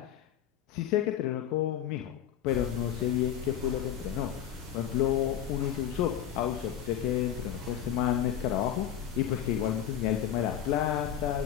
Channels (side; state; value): right; quieter; 10.0 dB